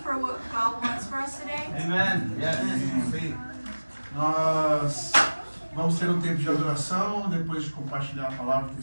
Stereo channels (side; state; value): both; inverted; correlation -1.00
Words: for what God wants for us today? Amen. Yes. Sim. Nós vamos ter um tempo de adoração, depois de compartilhar a palavra e